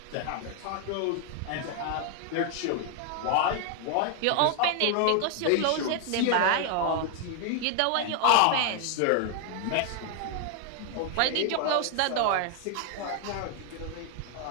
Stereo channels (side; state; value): both; different; correlation 0.00